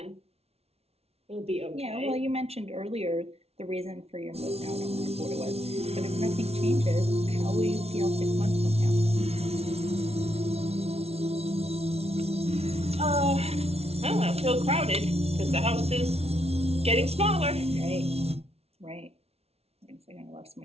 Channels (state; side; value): late; left; 0.30 ms